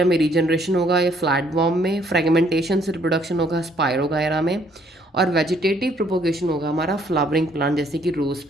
में रीजनरेशन होगा या फ्लैटवॉर्म में। फ्रेगमेंटेशन से रिप्रोडक्शन होगा स्पायरोगायरा में। और वेजिटेटिव प्रोपोगेशन होगा हमारा फ्लावरिंग प्लांट जैसे कि रोज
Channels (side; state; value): both; normal; correlation 0.65